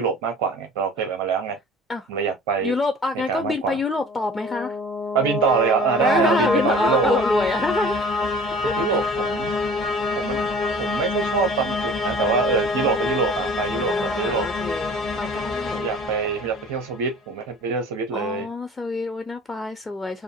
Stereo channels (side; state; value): both; normal; correlation 0.45